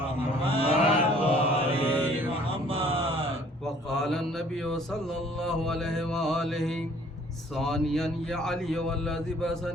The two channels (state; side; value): normal; both; correlation 0.57